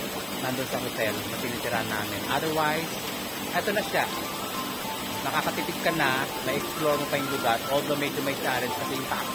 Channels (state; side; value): noise; right; hum, 28 dB below the sound